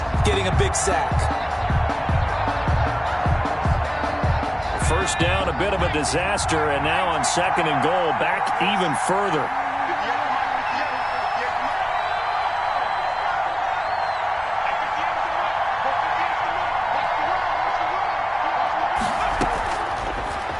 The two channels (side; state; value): both; identical; correlation 1.00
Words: getting a big sack. first down, a bit of a disaster, and now on 2nd and goal, back even further.